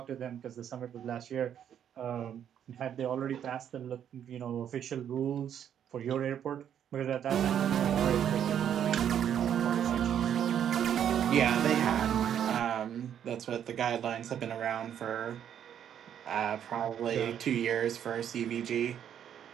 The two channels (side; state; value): left; quieter; 9.4 dB